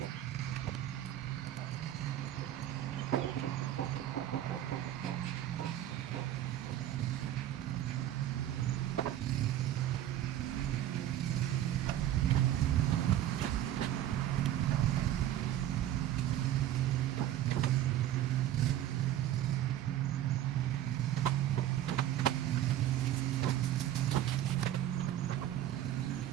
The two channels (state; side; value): quieter; left; 12.1 dB